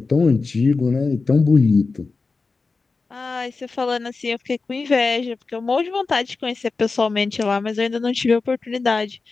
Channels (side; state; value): right; quieter; 4.1 dB